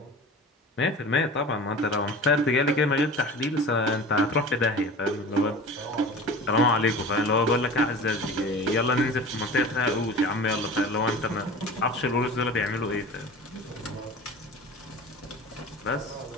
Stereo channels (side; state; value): both; normal; correlation 0.37